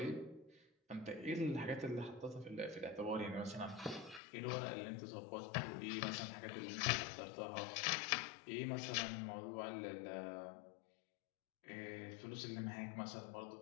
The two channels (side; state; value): right; drops out; at 4.2 s